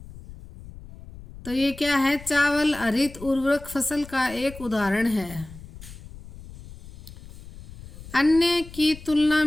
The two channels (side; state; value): left; noise; rumble, 17 dB below the sound